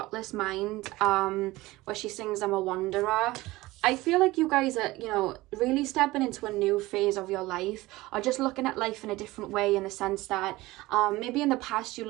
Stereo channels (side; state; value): left; quieter; 19.3 dB